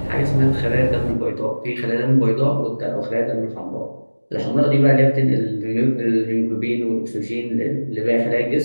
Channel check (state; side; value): inverted; both; correlation -1.00